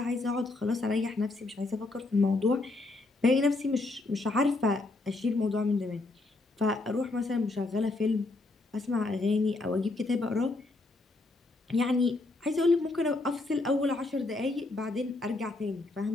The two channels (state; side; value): quieter; right; 3.1 dB